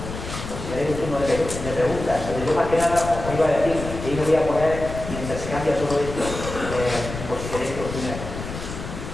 pues si tenéis un turno de preguntas, pero yo más que nada os iba a decir que yo me voy a poner, mientras se cambia todo esto, por si queréis opinar.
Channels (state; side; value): noise; left; rumble, 8 dB below the sound